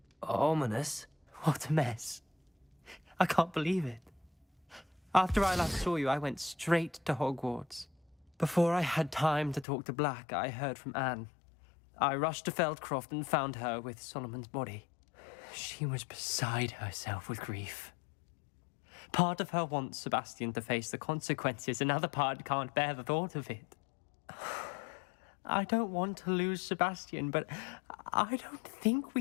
Ominous? What a mess. I can't believe it. After I last saw you, I went straight to Hogwarts. Before I had time to talk to Black, I heard from Anne. I rushed to Feldcroft and found her with Solomon's body. She was beside herself with grief. Part of her wants Sebastian to face the consequences, another part can't bear the thought of it. I don't want to lose Sebastian, but I don't think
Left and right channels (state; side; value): drops out; right; at 9.7 s